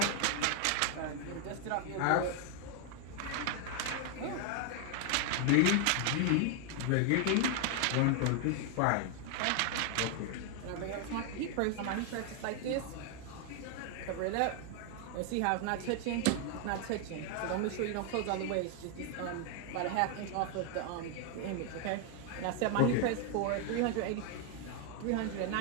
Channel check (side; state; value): both; different; correlation 0.00